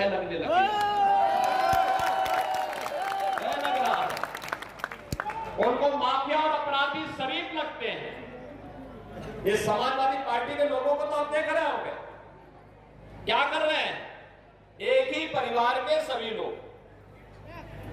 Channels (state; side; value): identical; both; correlation 1.00